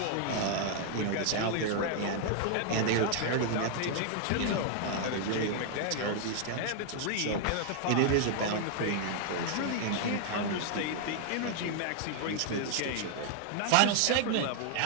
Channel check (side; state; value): both; different; correlation 0.00